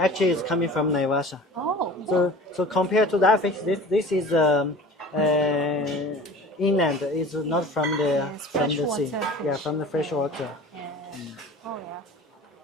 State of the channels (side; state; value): both; normal; correlation 0.41